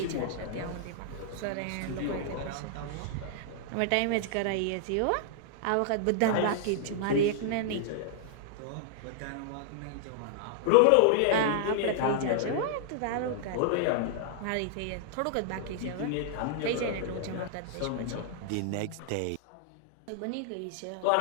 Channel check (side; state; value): both; different; correlation -0.01